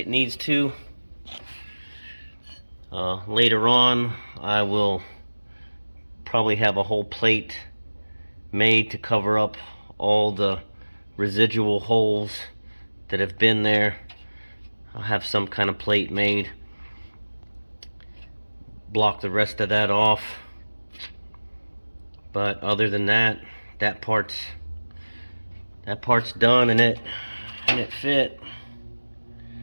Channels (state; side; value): inverted; both; correlation -1.00